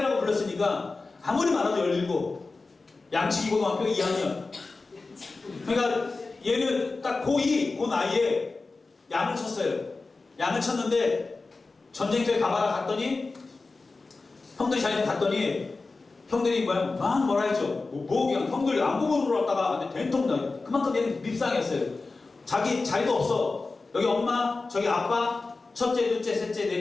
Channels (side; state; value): right; quieter; 3.7 dB